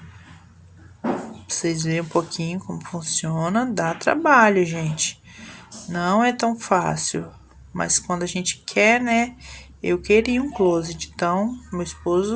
Pra vocês verem um pouquinho como funciona, dá trabalho, gente. Não é tão fácil, mas quando a gente quer, né? Eu queria um closet, então meu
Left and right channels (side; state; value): both; identical; correlation 1.00